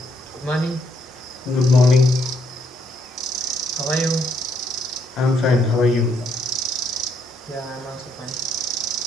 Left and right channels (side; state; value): both; normal; correlation 0.73